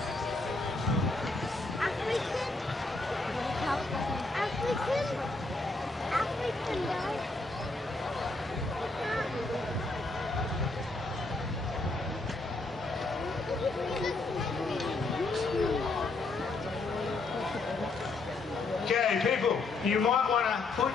African guy. Okay, people, you might want to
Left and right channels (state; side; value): quieter; right; 3.3 dB